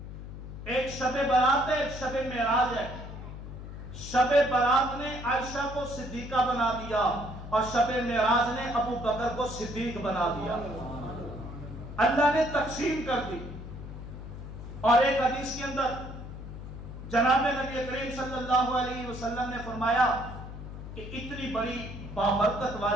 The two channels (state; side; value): noise; left; hum, 11 dB below the sound